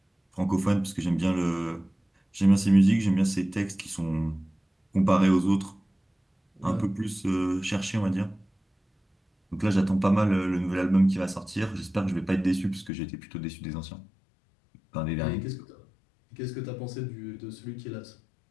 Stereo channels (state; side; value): drops out; right; at 12.9 s